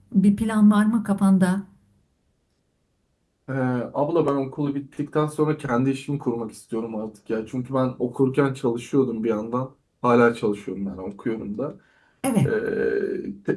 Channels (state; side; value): identical; both; correlation 1.00